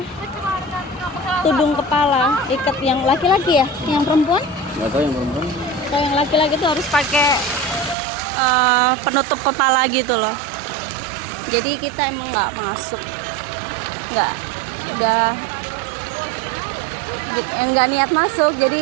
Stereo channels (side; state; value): left; drops out; at 8.0 s